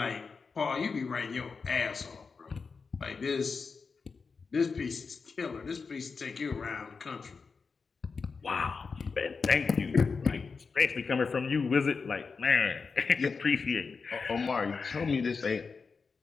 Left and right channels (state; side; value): quieter; right; 4.9 dB